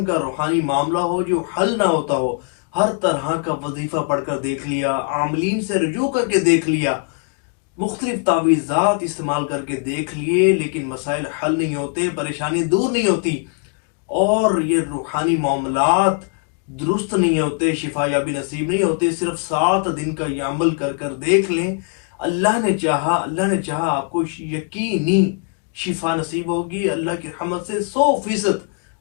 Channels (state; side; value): quieter; right; 37.4 dB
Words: کا روحانی معاملہ ہو جو حل نہ ہوتا ہو، ہر طرح کا وظیفہ پڑھ کر دیکھ لیا، عاملین سے رجوع کر کے دیکھ لیا، مختلف تعویذات استعمال کر کے دیکھ لیے، لیکن مسائل حل نہیں ہوتے، پریشانی دور نہیں ہوتی، اور یہ روحانی معاملات درست نہیں ہوتے، شفا یابی نصیب نہیں ہوتے۔ صرف 7 دن کا یہ عمل کر کر دیکھ لیں، اللہ نے چاہا آپ کو یقینی شفا نصیب ہوگی، اللہ کی رحمت سے 100%